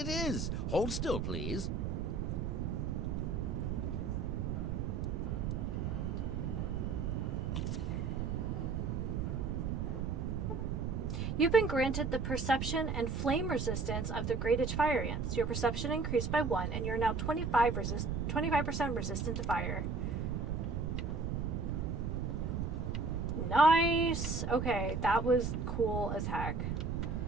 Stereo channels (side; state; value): right; noise; rumble, 1 dB below the sound